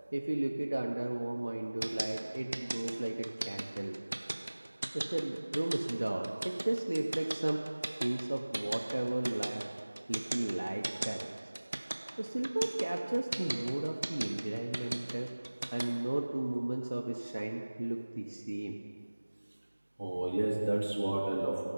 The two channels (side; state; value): both; inverted; correlation -1.00